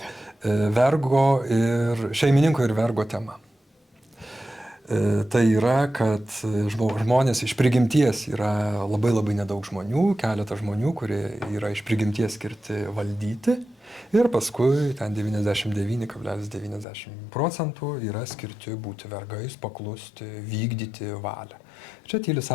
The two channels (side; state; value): right; drops out; at 16.9 s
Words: šeimininko ir vergo tema. Tai yra, kad žmonės iš prigimties yra labai nedaug žmonių, keletas žmonių, kurie yra iš prigimties skirti valdyti, ir paskui ten 99,90% yra skirti būti vergais, paklusti, vykdyti valią. Čia tyli